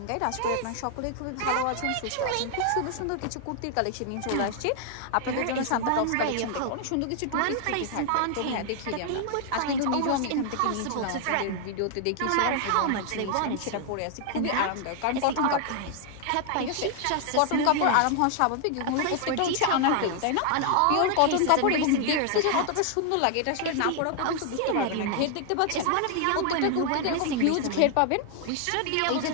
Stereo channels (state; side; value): different; both; correlation 0.00